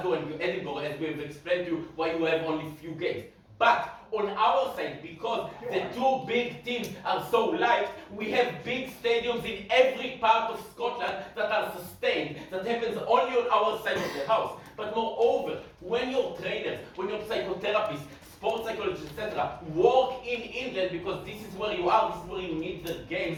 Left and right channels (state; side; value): identical; both; correlation 1.00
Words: and Edinburgh, as we have explained to you why you have only few games. But on our side, because the 2 big teams are so light, we have big stadiums in every part of Scotland that are sustained. That happens only on our side of the house. But moreover, when your trainers, when your psychotherapists, sports psychologists, etc., work in England because this is where you are, this is where you need the games,